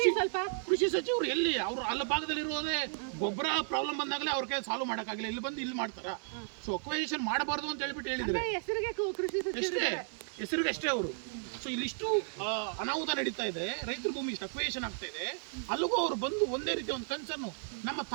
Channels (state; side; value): silent; left; digital silence